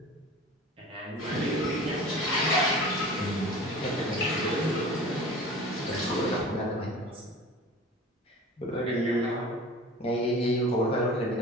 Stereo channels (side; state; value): both; normal; correlation 0.39